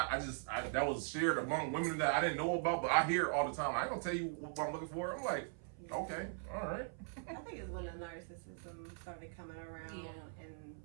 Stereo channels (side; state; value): left; silent; 51 dB below the other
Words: that was shared among women that I didn't know about, but I hear it all the time. I ain't gonna tell you what I'm looking for. I'm like, okay, all right. I think it's when the narcissism started coming around and